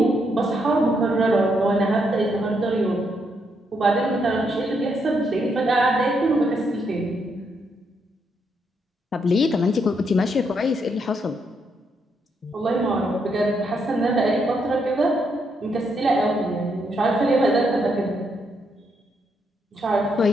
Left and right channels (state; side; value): normal; both; correlation 0.77